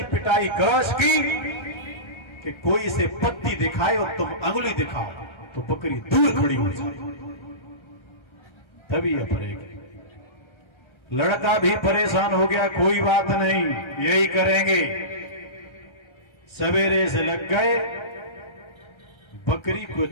पिटाई करो इसकी कि कोई इसे पत्ती दिखाए और तुम अंगुली दिखाओ तो बकरी दूर खड़ी हो जाए, तभी ये पड़ेगी। लड़का भी परेशान हो गया, कोई बात नहीं, यही करेंगे। सवेरे से लग गए, बकरी को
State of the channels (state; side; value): late; right; 1.3 ms